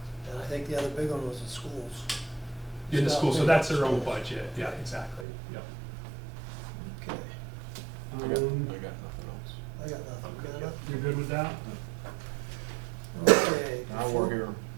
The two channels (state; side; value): drops out; left; at 5.2 s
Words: And I think the other big one was the schools. In the Stop school, so paying that's for their own schools. budget. Yeah, exactly. Yep. Okay, I got nothing else. I got nothing. Got enough? You're good with that? Okay. Now we're here.